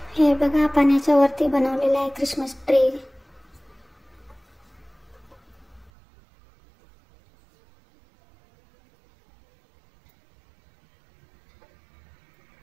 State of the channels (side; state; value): left; drops out; at 5.9 s